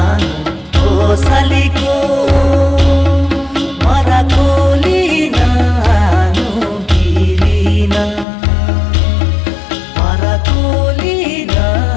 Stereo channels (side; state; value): right; drops out; at 8.2 s